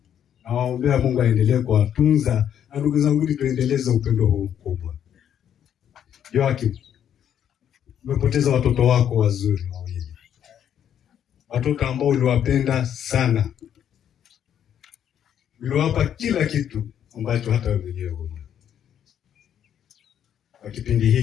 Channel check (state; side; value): quieter; right; 9.5 dB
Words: Nawaombea Mungu aendelee kuwatunza, na ndugu zangu, tuendeleze upendo huu mkubwa. Joakim, umepoteza watoto wako wazuri wawili, watoto ambao uliwapenda sana, uliwapa kila kitu ambacho hata wewe mwenyewe huna. Kwa kipindi